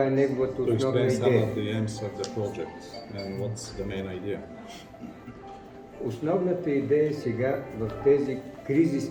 е неговата основна идея. Основната идея сега в тези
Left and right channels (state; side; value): identical; both; correlation 1.00